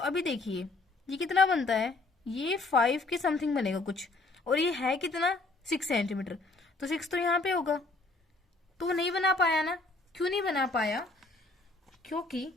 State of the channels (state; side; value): quieter; right; 3.2 dB